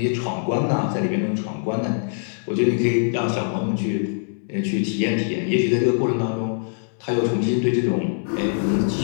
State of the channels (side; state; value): right; silent; digital silence